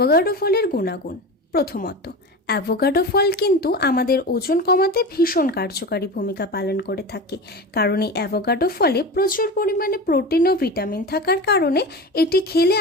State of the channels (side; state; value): both; normal; correlation 0.28